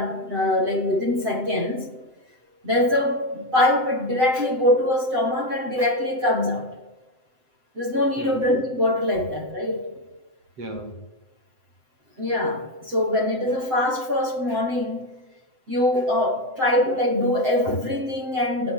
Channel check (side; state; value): left; late; 7.8 ms